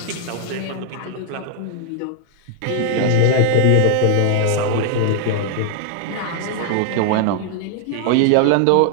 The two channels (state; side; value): different; both; correlation 0.00